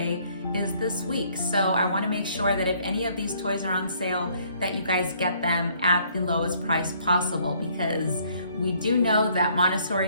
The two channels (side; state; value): both; inverted; correlation -0.64